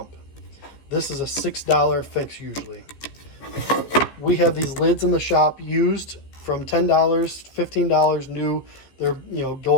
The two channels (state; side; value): late; right; 15 ms